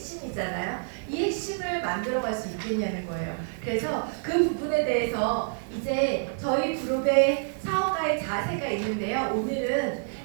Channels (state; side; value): silent; left; digital silence